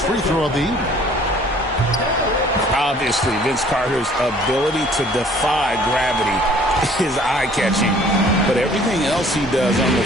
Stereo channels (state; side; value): normal; both; correlation 0.55